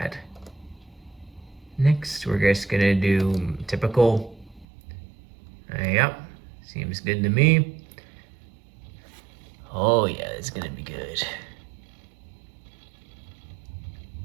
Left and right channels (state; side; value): drops out; left; at 4.7 s